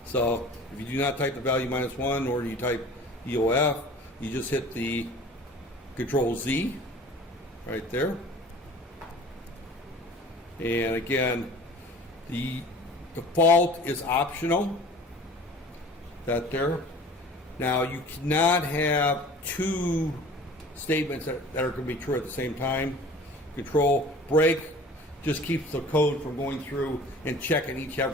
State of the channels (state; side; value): normal; both; correlation 0.44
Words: So if you do not type the value -1 or you type EOF, you just hit the Control Z right there. And again, the default is optional, that there. Now you cannot have two statements that are going to be true at the same time. Control break just keeps the code from going through and checking each